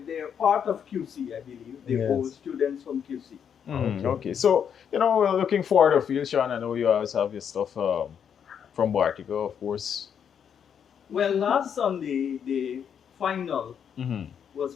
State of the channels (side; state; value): right; quieter; 8.0 dB